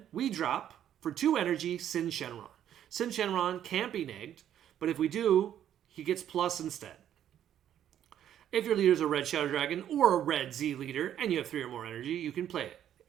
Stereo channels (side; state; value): left; quieter; 10.5 dB